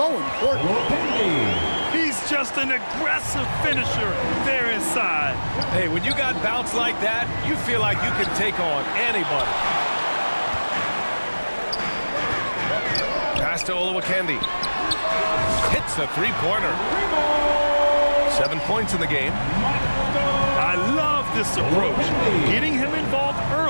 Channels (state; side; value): inverted; both; correlation -1.00